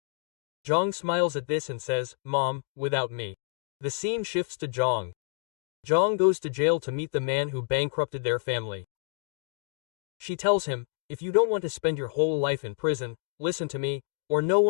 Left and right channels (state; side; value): silent; right; digital silence